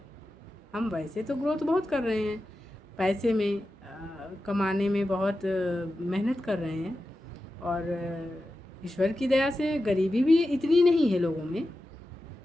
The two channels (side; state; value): both; normal; correlation 0.92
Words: हम वैसे तो ग्रोथ बहुत कर रहे हैं, पैसे में कमाने में बहुत मेहनत कर रहे हैं, और ईश्वर की दया से गरीबी भी इतनी नहीं है लोगों में,